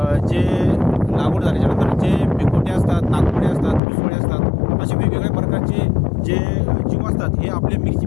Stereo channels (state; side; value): drops out; right; at 3.8 s